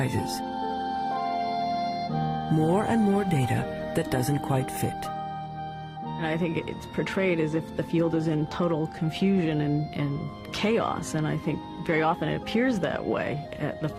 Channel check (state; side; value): identical; both; correlation 1.00